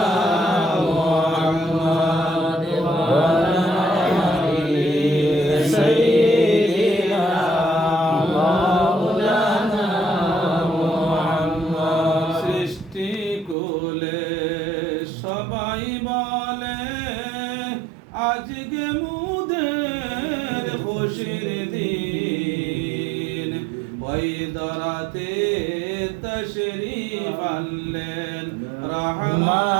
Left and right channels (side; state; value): left; drops out; at 13.6 s